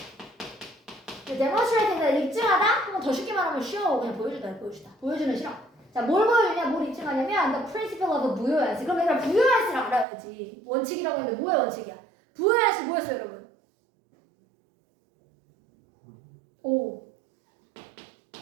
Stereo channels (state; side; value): drops out; left; at 10.1 s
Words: demonstrate가 입증하다? 한번 더 쉽게 말하면 쉬워. 그냥 보여주는 실험. 자, 뭘 보여주냐? 뭘 입증하냐면 the principle of 부여야지. 그럼 얘들아 부여야지를 알아야지. 원칙이라고 했는데 뭐의 원칙이야? 부여야지 뭐였어요, 여러분? 오,